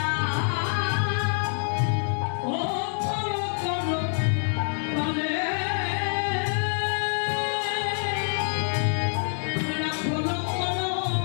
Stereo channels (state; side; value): silent; right; 57 dB below the other